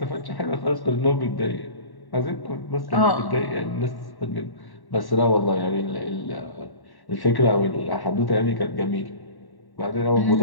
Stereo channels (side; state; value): right; late; 1.1 ms